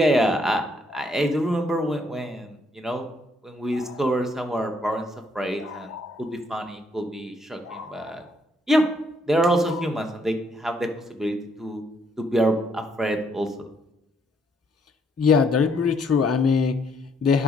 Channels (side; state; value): both; normal; correlation 0.70